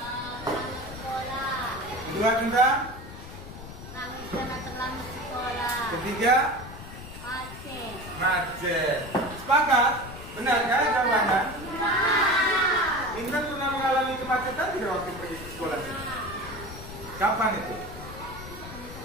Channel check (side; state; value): left; noise; rumble, 13 dB below the sound